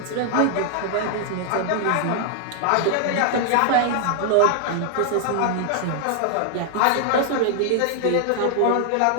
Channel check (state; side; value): different; both; correlation 0.00